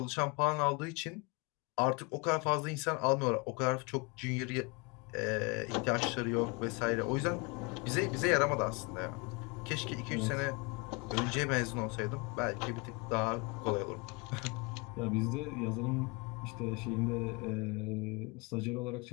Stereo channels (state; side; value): quieter; right; 29.1 dB